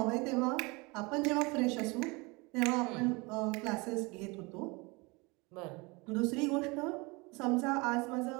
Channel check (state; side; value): quieter; left; 26.5 dB